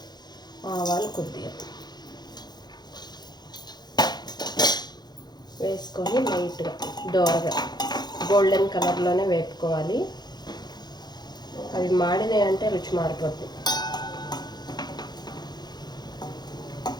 ఆవాలు కొద్దిగా వేసుకొని లైట్గా దోరగా గోల్డెన్ కలర్లోనే వేపుకోవాలి. అవి మాడినాయి అంటే రుచి మారిపోద్ది.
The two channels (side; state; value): right; late; 0.20 ms